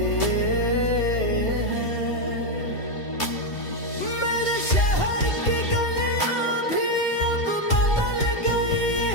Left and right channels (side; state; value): right; late; 2.9 ms